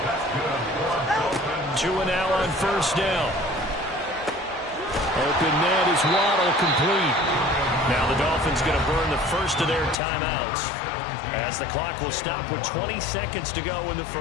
Tua now on first down. Open net is Waddle complete. Now the Dolphins going to burn the first of their timeouts as the clock will stop with 20 seconds to go in the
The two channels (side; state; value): right; drops out; at 10.0 s